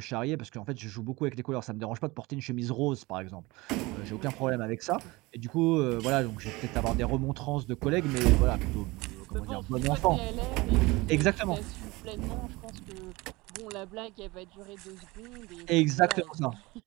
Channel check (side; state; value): left; quieter; 22.5 dB